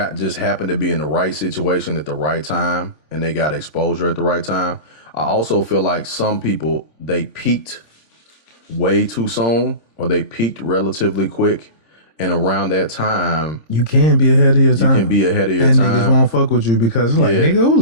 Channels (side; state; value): left; late; 3.5 ms